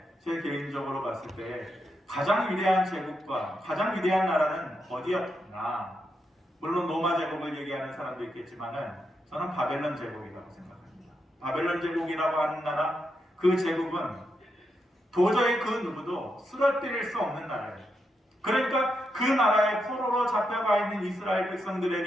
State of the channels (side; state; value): both; normal; correlation 0.83